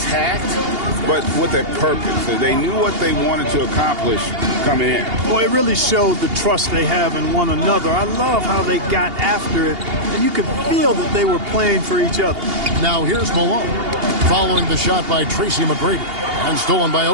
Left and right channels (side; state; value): left; late; 2.8 ms